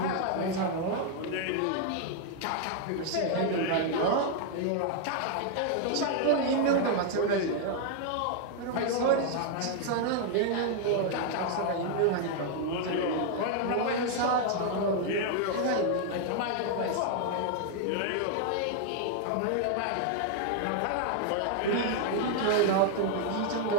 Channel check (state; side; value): different; both; correlation 0.00